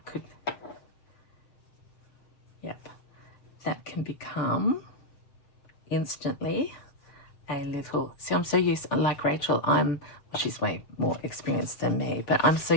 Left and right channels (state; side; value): late; right; 7.1 ms